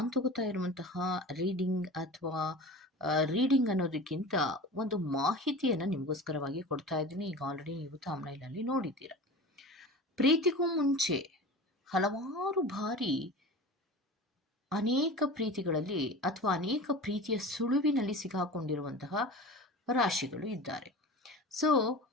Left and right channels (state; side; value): normal; both; correlation 0.34